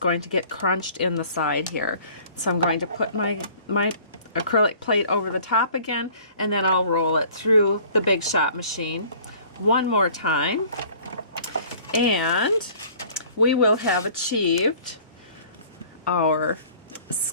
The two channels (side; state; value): both; inverted; correlation -0.51